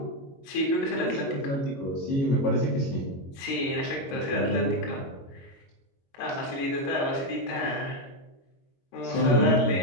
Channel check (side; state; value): right; late; 22 ms